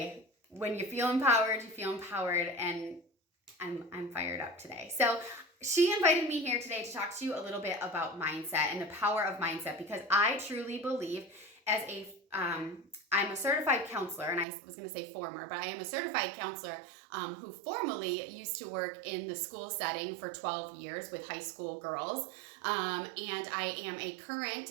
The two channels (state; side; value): drops out; left; at 14.5 s